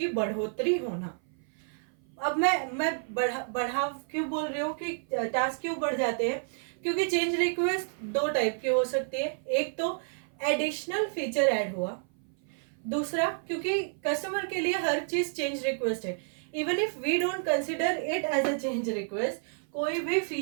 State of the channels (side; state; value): left; silent; 56 dB below the other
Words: बढ़ोतरी होना. अब मैं बढ़ा क्यों बोल रही हूँ कि टास्क क्यों बढ़ जाते हैं, क्योंकि चेंज रिक्वेस्ट दो टाइप की हो सकती है. एक तो एडिशनल फीचर ऐड हुआ, दूसरा क्योंकि कस्टमर के लिए हर चीज चेंज रिक्वेस्ट है. Even if we don't consider it as a change request, कोई भी